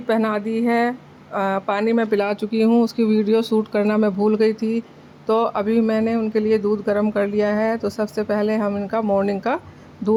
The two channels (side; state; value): both; identical; correlation 1.00